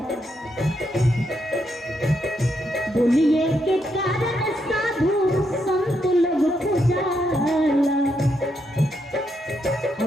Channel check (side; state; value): both; normal; correlation 0.79